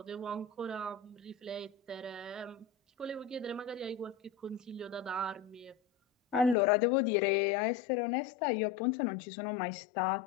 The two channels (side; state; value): right; drops out; at 6.6 s